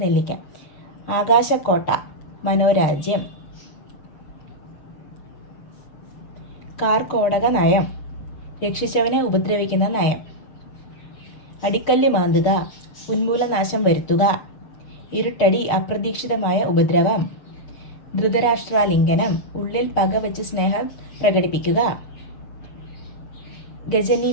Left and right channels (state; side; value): late; right; 6.7 ms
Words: നെല്ലിക്ക. ആകാശക്കോട്ട, മനോരാജ്യം. കാർക്കോടക നയം, രക്ഷിച്ചവനെ ഉപദ്രവിക്കുന്ന നയം. അടിക്കല്ല് മാന്തുക, ഉന്മൂലനാശം വരുത്തുക. ഇരുട്ടടി, അപ്രതീക്ഷിതമായ ഉപദ്രവം. ധൃതരാഷ്ട്രാലിംഗനം, ഉള്ളിൽ പകവച്ച് സ്നേഹം പ്രകടിപ്പിക്കുക.